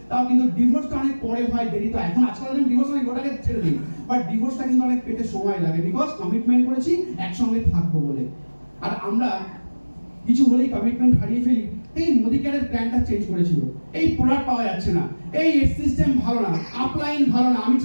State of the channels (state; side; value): inverted; both; correlation -1.00